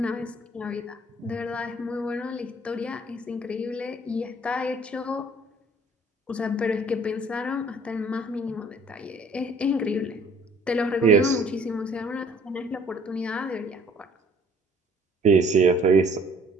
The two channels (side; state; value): both; normal; correlation 0.56